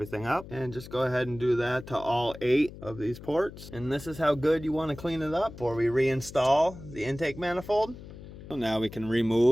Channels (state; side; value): noise; left; hum, 15 dB below the sound